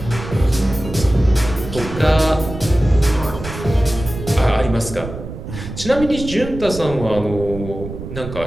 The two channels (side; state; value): right; noise; rumble, 10 dB below the sound